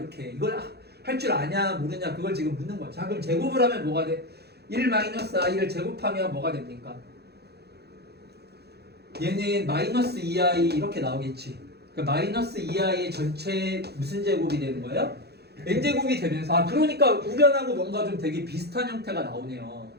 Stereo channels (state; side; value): late; left; 0.48 ms